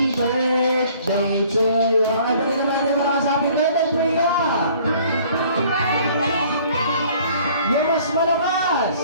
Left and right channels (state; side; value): inverted; both; correlation -0.55